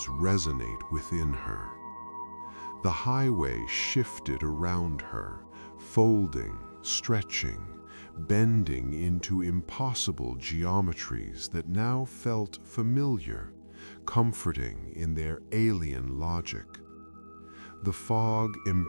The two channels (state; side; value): inverted; both; correlation -1.00